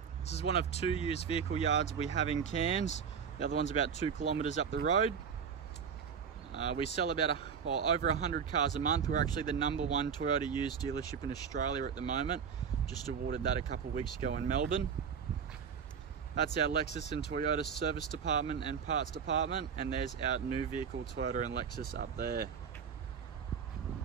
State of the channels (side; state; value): left; quieter; 6.8 dB